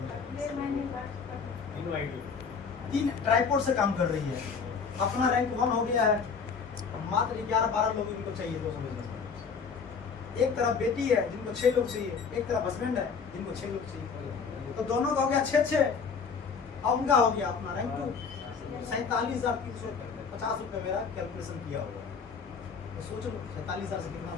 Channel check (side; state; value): right; quieter; 5.7 dB